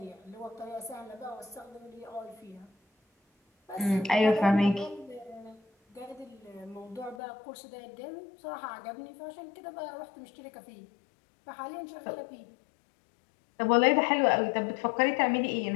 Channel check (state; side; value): drops out; right; at 7.2 s